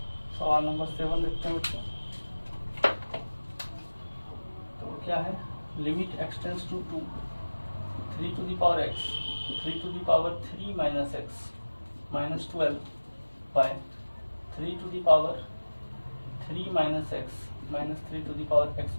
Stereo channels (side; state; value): both; inverted; correlation -1.00